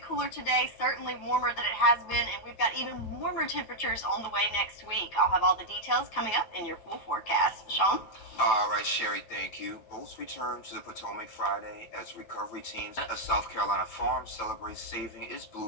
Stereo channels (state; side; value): late; right; 9.2 ms